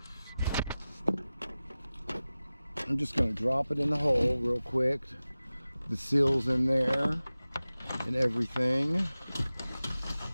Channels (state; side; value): inverted; both; correlation -0.96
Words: I'm just going to drop it in the hole real quick. The seal's in there and everything.